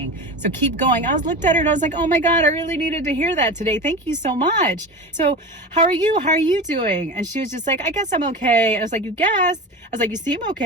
So keep going." I looked at her and I was like, "Oh my God, I really needed to hear that today. Thank you so much. So how are you? How are you doing?" And she was just like, "I guess I'm okay." I was like, "You guess?" I was like, "You seem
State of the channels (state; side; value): normal; both; correlation 0.29